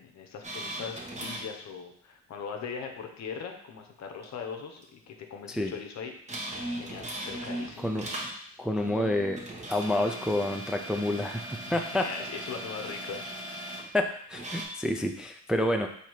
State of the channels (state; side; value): normal; both; correlation 0.67